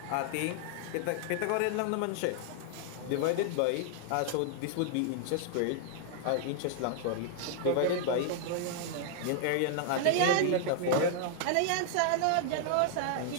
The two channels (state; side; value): different; both; correlation -0.01